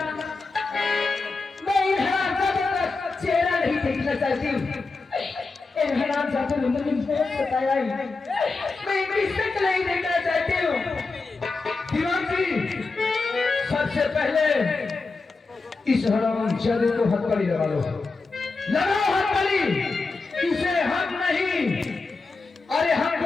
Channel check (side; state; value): right; quieter; 3.9 dB